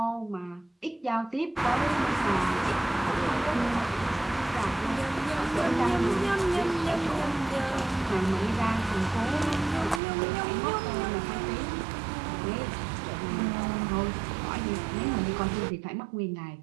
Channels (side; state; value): left; drops out; at 10.0 s